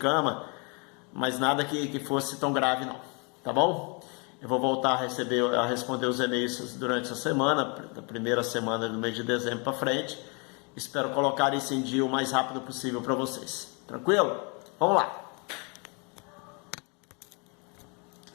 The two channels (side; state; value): right; quieter; 33.4 dB